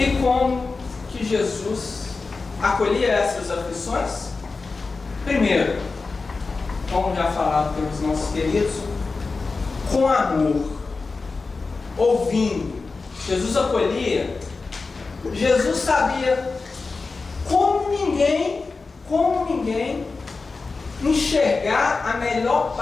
como que Jesus acolhia essas aflições? Primeiro, como já falado pelos nossos queridos, com amor, ouvindo. Jesus acolhia, Jesus sabia como ninguém enxergar a melhor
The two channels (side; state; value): right; quieter; 4.1 dB